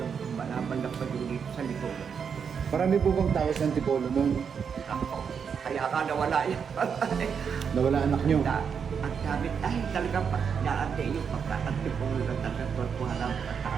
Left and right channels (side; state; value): left; quieter; 6.7 dB